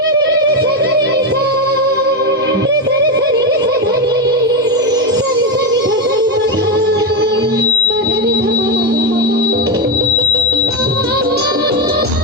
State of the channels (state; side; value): normal; both; correlation 0.09